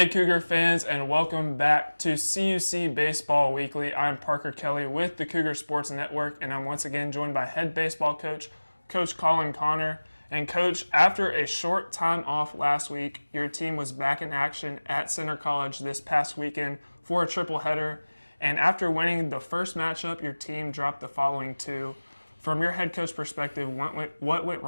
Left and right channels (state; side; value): inverted; both; correlation -1.00